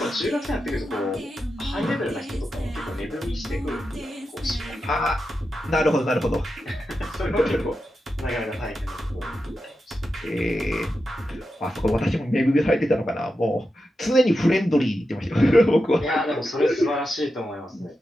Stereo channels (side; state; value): both; normal; correlation 0.89